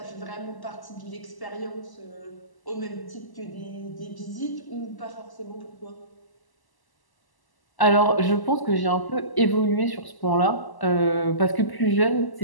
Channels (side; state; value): right; late; 1.0 ms